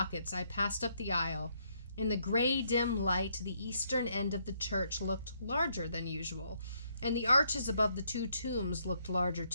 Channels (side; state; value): both; inverted; correlation -0.72